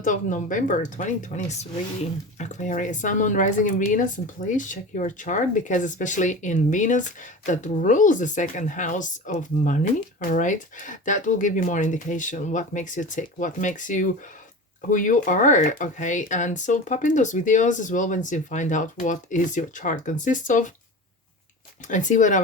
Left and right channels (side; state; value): both; normal; correlation 0.31